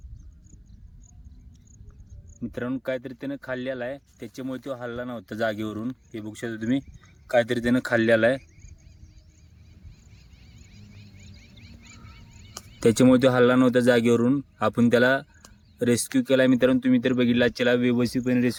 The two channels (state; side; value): identical; both; correlation 1.00